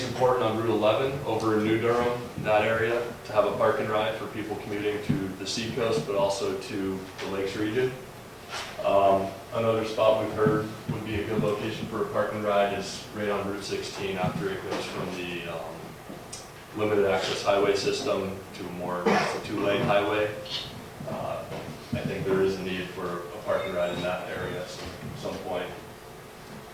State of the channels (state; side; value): identical; both; correlation 1.00